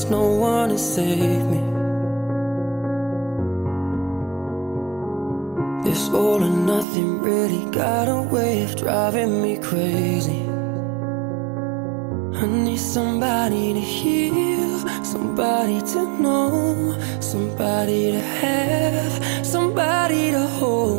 no one to save me. This all or nothing really got a way of driving me crazy. I need somebody to heal, somebody to know, somebody to have, somebody to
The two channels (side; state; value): left; drops out; at 6.9 s